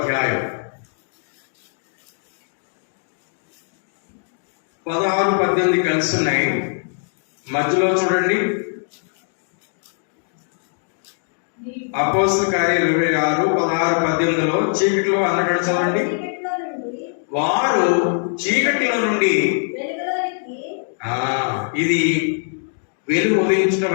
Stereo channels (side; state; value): right; silent; digital silence